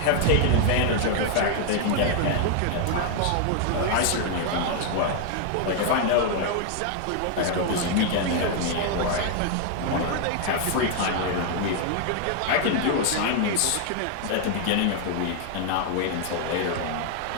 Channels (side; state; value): both; different; correlation 0.00